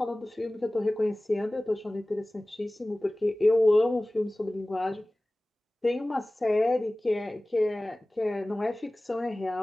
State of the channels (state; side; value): normal; both; correlation 0.98